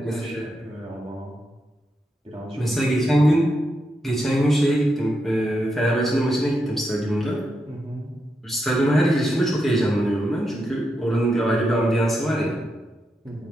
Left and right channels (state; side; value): normal; both; correlation 0.84